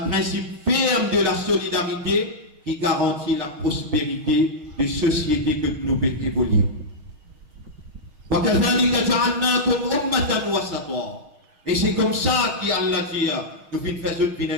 principe ferme de la solidarité qui garantit la prospérité de société que nous pouvons évoluer. Et c'est comme ça qu'Allah dit, nous faisons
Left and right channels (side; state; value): left; late; 6.7 ms